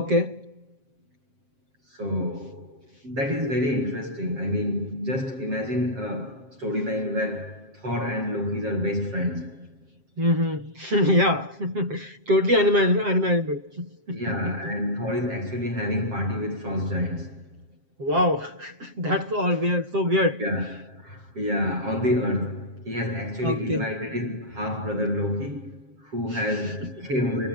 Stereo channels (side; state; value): left; late; 7.6 ms